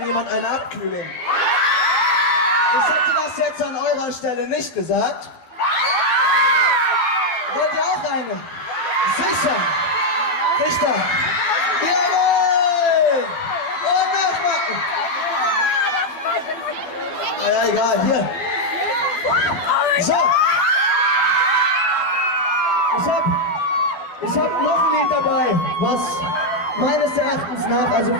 jemand eine Abkühlung? Ich hätte das jetzt an eurer Stelle nicht gesagt. Wollt ihr auch eine? Sicher! Richter! Jawohl! Und nochmal! Naja, egal, hier. So. Ich hab noch ein Lied dabei, was meines Erachtens nach, also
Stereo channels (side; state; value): right; late; 12 ms